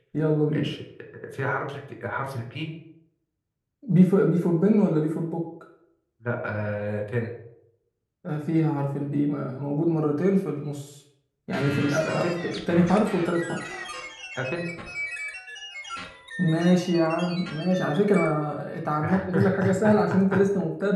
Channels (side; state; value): both; identical; correlation 1.00